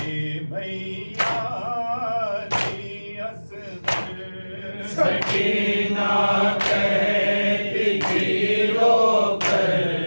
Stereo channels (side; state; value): both; inverted; correlation -1.00